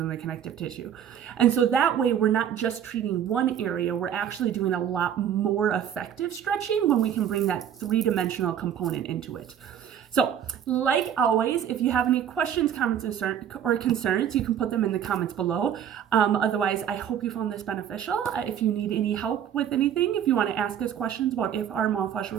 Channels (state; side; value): quieter; left; 9.4 dB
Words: the connective tissue. And so that way we're not just treating one area, we're actually doing a lot more effective stretching when we can bring that three-dimensional component into it. So, like always, if you have any questions, comments, or concerns, you can put them in the comments below. Otherwise, I hope you found this beneficial. If you need any help with anything, if you want to ask us questions about if our myofascial